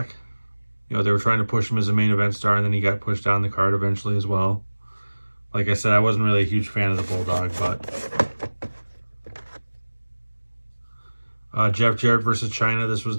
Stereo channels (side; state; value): both; inverted; correlation -1.00